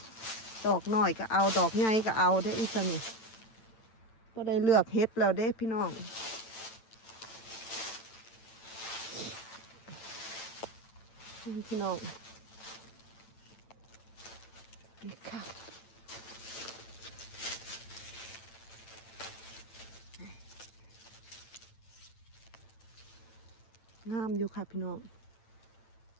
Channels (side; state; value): right; late; 8.9 ms